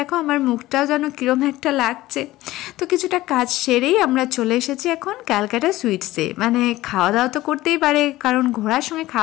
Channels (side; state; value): right; quieter; 16.9 dB